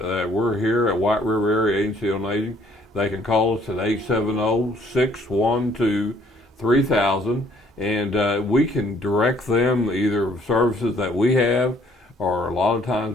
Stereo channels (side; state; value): both; normal; correlation 0.62